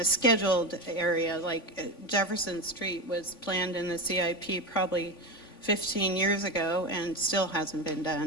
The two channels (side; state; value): right; late; 3.5 ms